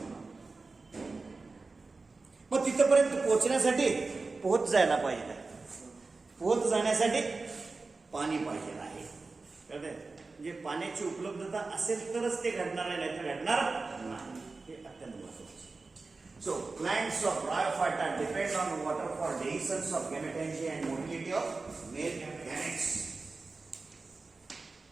मग तिथपर्यंत पोहोचण्यासाठी पोहोच जायला पाहिजे. पोहोच जाण्यासाठी पाणी पाहिजे आहे. कळतंय? म्हणजे पाण्याची उपलब्धता असेल तरच ते घडणार आहे, नाही तर घडणार नाही. हे अत्यंत महत्त्वाचे. So plants of Bryophyta depend on water for dehiscence of gametangia and motility of male gametes.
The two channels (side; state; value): left; quieter; 3.8 dB